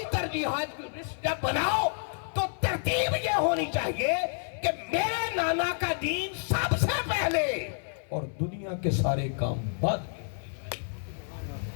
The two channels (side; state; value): right; silent; digital silence